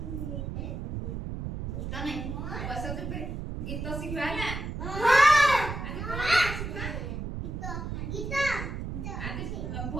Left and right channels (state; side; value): noise; right; rumble, 5 dB below the sound